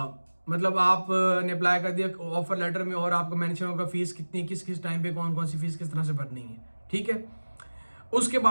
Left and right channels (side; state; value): both; inverted; correlation -1.00